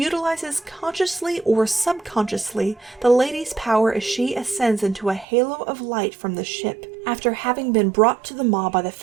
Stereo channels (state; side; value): drops out; left; at 5.2 s